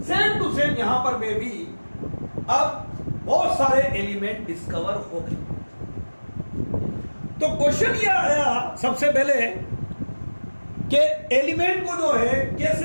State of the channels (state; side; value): inverted; both; correlation -1.00